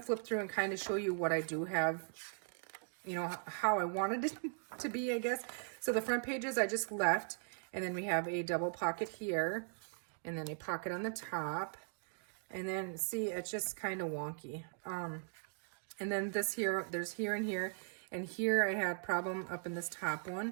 flip through and kind of show you what I do have, how I wanted it to be, I guess. So the front pages I just left. And then we have a double pocket here, and then a pocket on the top. And then, see, it's just kind of wonky. And then this here, there's here and here. And here I had problem up in this top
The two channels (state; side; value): silent; left; digital silence